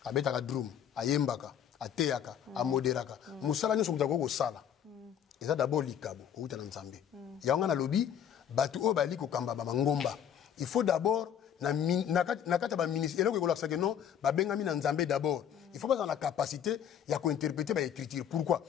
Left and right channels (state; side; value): quieter; right; 9.1 dB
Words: abetaka drum ayembaka ateyaka amoderaka musala nyonso mutu akoko sala eza d'abord likabo outa na Nzambe yango na lobi batu o bali ko kamba ba ngomba il faut d'abord na kata ba ministre eloko ko laksa que non ba benga mi na Nzambe d'abord il faut pas dans la capacité ya ko interpréter ba écriture. Pourquoi?